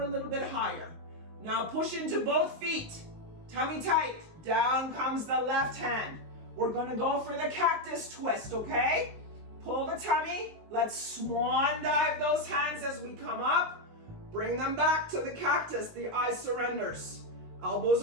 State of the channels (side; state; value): left; late; 19 ms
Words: a little bit higher. Now push into both feet. Tummy tight. Down comes the left hand. We're gonna go for the cactus twist, okay? Pull the tummy. Let's swan dive those hands as we come up. Bring them back to the cactus. The eye surrenders. Elbows